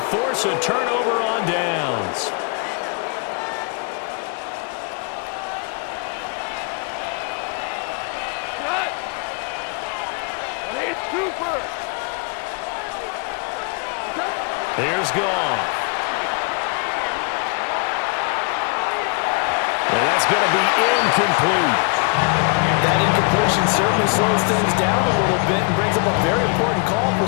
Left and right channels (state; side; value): quieter; right; 36.7 dB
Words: force a turnover on downs. is Goff. And that's going to be incomplete. That incompletion certainly slows things down a little bit and brings up a very important call for